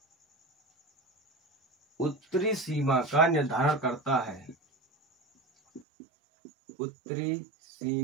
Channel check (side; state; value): left; drops out; at 5.9 s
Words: उत्तरी सीमा का निर्धारण करता है। उत्तरी